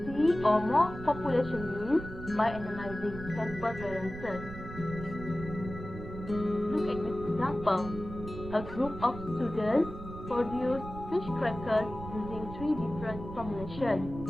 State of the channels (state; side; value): noise; right; rumble, 11 dB below the sound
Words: three or more population means by analyzing sample variances. Look at this example. A group of students produced fish crackers using three different formulations,